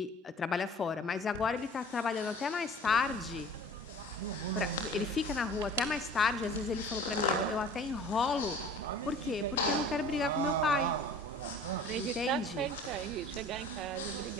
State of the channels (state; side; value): normal; both; correlation 0.45